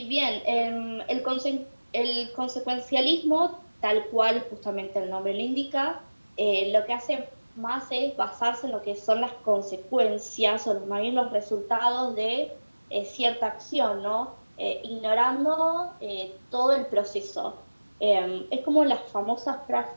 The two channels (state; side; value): inverted; both; correlation -1.00